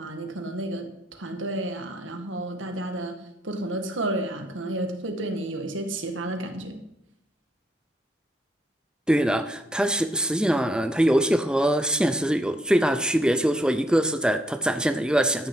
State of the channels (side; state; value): both; normal; correlation 0.73